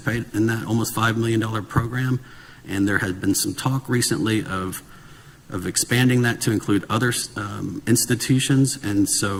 in that almost $5 million program. And there has been some talk recently of expanding that to include other institutions, and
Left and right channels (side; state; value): both; identical; correlation 1.00